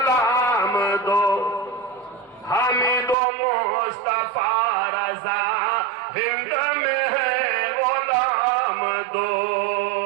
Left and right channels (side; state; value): left; drops out; at 3.2 s